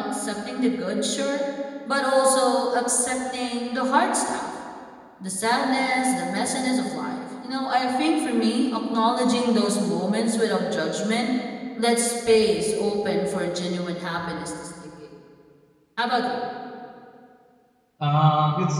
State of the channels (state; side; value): identical; both; correlation 1.00